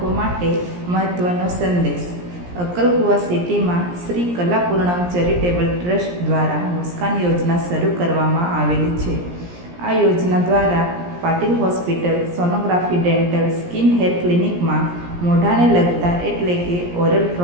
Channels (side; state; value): left; late; 17 ms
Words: માટે મહત્વનો સંદેશ. અક્કલકુવા સિટીમાં શ્રી કલાપૂર્ણમ ચેરિટેબલ ટ્રસ્ટ દ્વારા મુસ્કાન યોજના શરૂ કરવામાં આવેલી છે. આ યોજના દ્વારા Patil hospital, sonography, dental, skin hair ક્લિનિકમાં મોઢાને લગતા એટલે કે ઓરલ